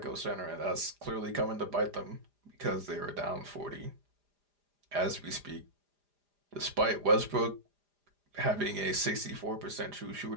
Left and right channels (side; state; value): left; late; 4.9 ms